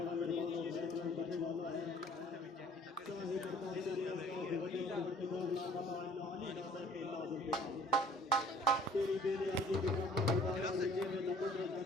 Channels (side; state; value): both; normal; correlation 0.54